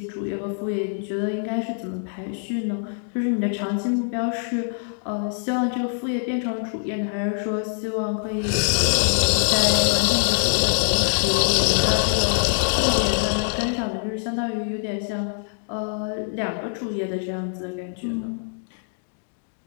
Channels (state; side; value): silent; right; digital silence